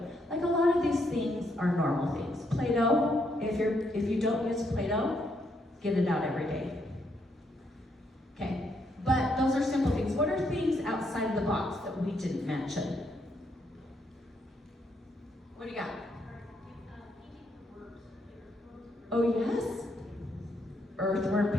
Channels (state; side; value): normal; both; correlation 0.76